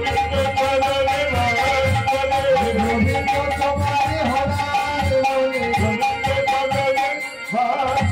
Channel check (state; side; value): identical; both; correlation 1.00